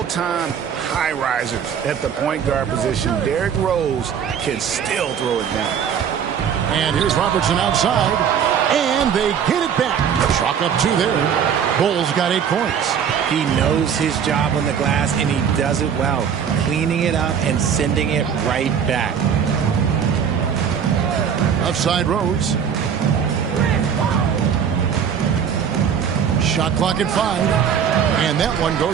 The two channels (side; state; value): left; quieter; 7.8 dB